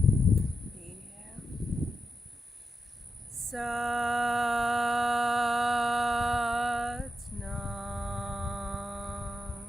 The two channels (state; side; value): normal; both; correlation 0.88